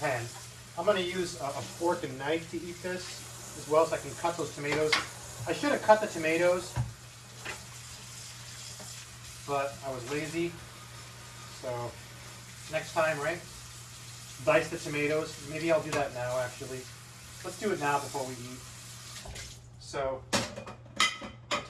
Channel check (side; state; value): both; identical; correlation 1.00